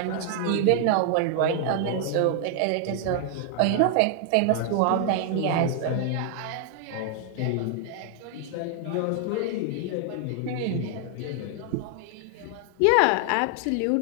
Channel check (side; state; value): both; different; correlation 0.00